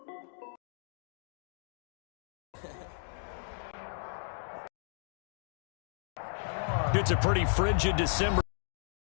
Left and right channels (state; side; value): silent; right; digital silence